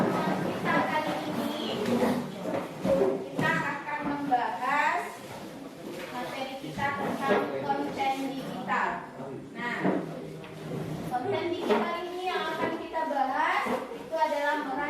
kita kali ini, kita akan membahas materi kita tentang konten digital. Nah, konten digital ini yang akan kita bahas itu adalah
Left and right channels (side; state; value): both; identical; correlation 1.00